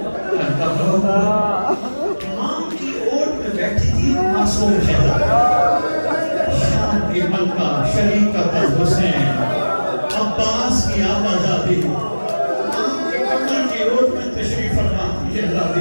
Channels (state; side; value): inverted; both; correlation -1.00